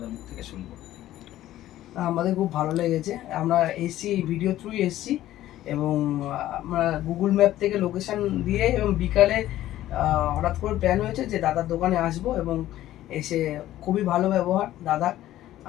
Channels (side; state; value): right; quieter; 14.0 dB